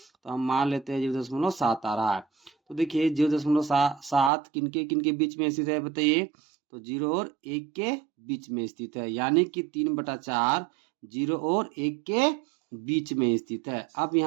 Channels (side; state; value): left; drops out; at 4.3 s